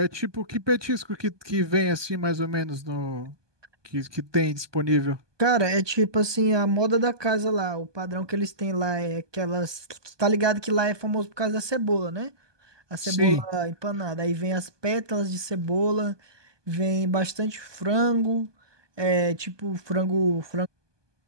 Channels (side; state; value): left; late; 1.2 ms